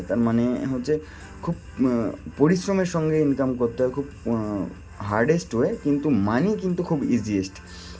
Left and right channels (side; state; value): both; identical; correlation 1.00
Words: তার মানে হচ্ছে খুব পরিশ্রমের সঙ্গে ইনকাম করতে হয়, খুব হার্ডেস্ট ওয়ে, কিন্তু মানি কিন্তু খুব ইজিয়েস্ট।